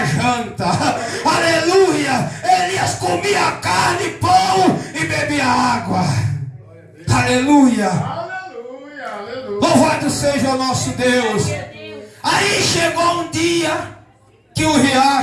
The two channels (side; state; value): both; identical; correlation 1.00